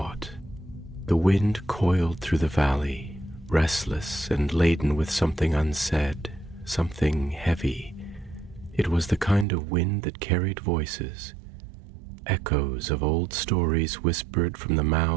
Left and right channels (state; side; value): drops out; left; at 9.5 s